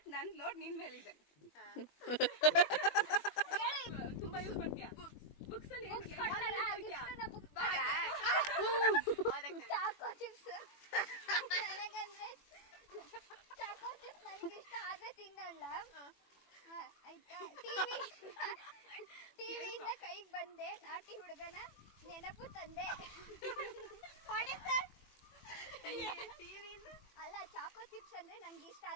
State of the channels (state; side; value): late; right; 21 ms